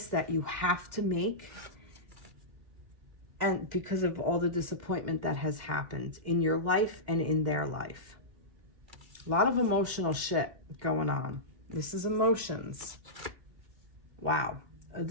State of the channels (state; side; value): late; left; 2.1 ms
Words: that you have to make, and because of all the disappointment that has happened in your life and in their life. A lot of emotional shit going on. This is emotions. Wow.